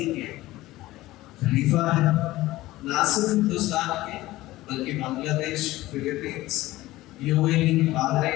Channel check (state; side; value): quieter; right; 17.4 dB